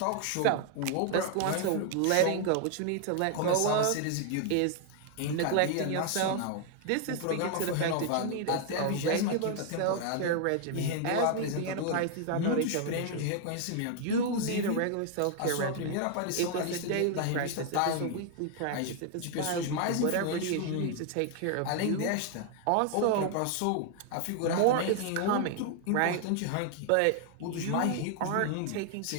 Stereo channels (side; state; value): both; different; correlation 0.00